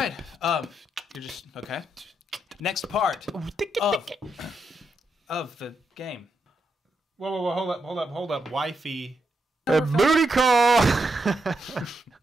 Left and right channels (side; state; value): both; normal; correlation 0.82